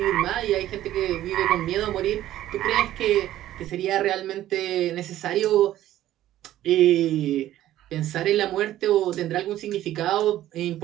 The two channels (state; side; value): quieter; left; 13.4 dB